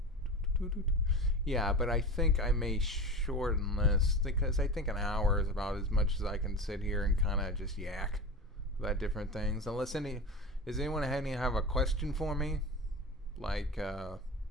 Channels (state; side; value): normal; both; correlation 0.28